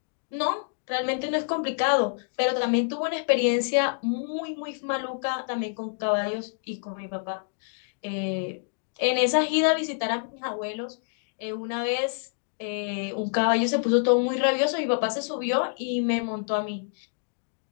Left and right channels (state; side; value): silent; right; digital silence